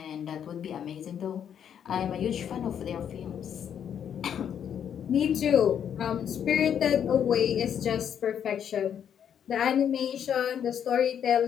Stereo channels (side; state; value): right; quieter; 8.7 dB